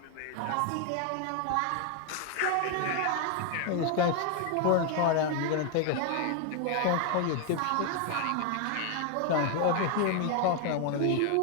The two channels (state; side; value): different; both; correlation 0.01